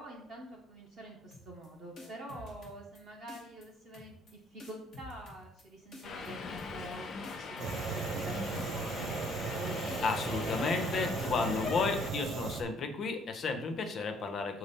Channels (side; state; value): both; normal; correlation 0.62